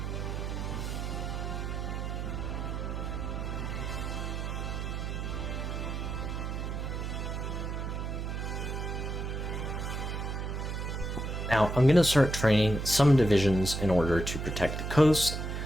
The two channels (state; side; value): noise; right; hum, 3 dB below the sound